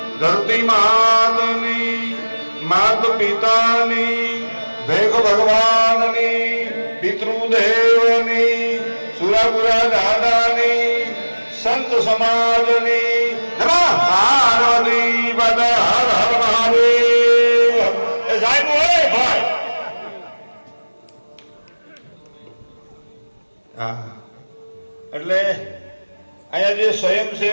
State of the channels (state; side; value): inverted; both; correlation -1.00